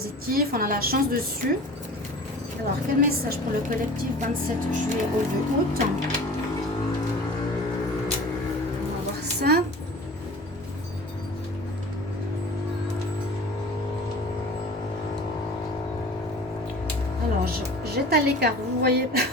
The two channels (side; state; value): both; normal; correlation 0.41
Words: On a la chance dessus. Alors, quel message pour le collectif 27 juillet au 2 août? On va voir ça. Alors, j'étale les cartes. Vous voyez